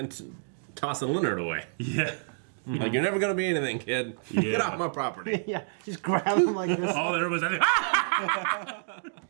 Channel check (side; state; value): left; silent; digital silence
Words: tossing Leonard away. Yeah. Like, you're never going to be anything, kid. Get Yeah. off my property. Yeah, just grab him like this. All there was, I